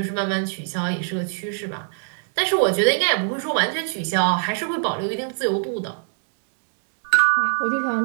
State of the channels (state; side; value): silent; left; 63 dB below the other